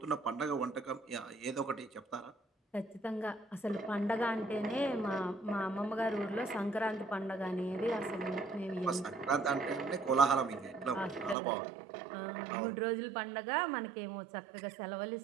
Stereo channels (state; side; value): drops out; left; at 11.4 s